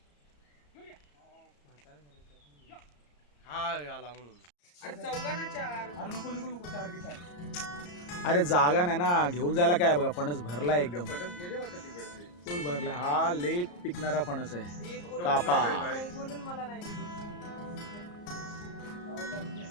हा आला म्हणून. अरे जागा नाही ना, घेऊन जायला काय बघा, फणस भरला एकदम. हा लेट पिकणारा फणस आहे. कापा फणस.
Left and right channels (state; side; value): late; right; 34 ms